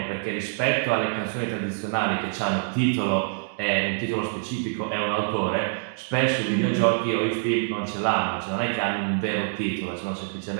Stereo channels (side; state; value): left; silent; digital silence